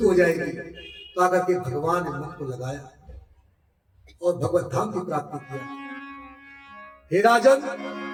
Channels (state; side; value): identical; both; correlation 1.00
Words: हो जाएगी। तो आकर के भगवान ने मन को लगाया और भगवत धाम की प्राप्ति किया। हे राजन,